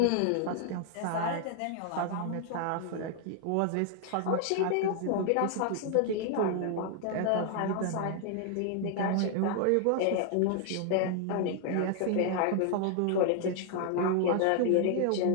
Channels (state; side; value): different; both; correlation 0.00